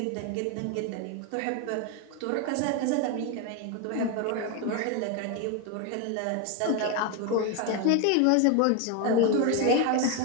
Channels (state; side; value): different; both; correlation 0.01